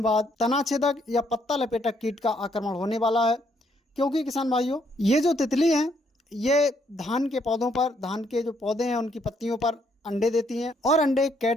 बाद तना छेदक या पत्ता लपेटक कीट का आक्रमण होने वाला है। क्योंकि किसान भाइयों, ये जो तितली हैं ये धान के पौधों पर, धान के जो पौधे हैं उनकी पत्तियों पर अंडे देती हैं और अंडे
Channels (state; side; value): normal; both; correlation 0.71